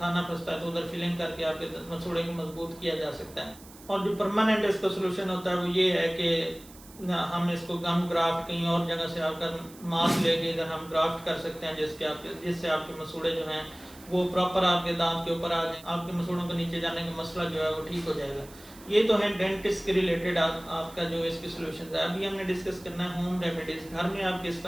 फंसता है तो उधर फिलिंग करके आपके मसूड़े को मजबूत किया जा सकता है। और जो परमानेंट इसका सोल्यूशन होता है वो ये है कि हम इसको गम ग्राफ्ट कहीं और जगह से आपका मांस लेके इधर हम ग्राफ्ट कर सकते हैं जिससे आपके मसूड़े जो हैं वो प्रॉपर आपके दांत के ऊपर आ जाए, आपके मसूड़ों को नीचे जाने का मसला जो है वो ठीक हो जाएगा। ये तो है डेंटिस्ट के रिलेटेड आपका जो इसकी सोल्यूशन है। अभी हमने डिस्कस करना है होम रेमेडीज़। घर में आप किस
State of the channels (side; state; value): right; noise; hiss, 21 dB below the sound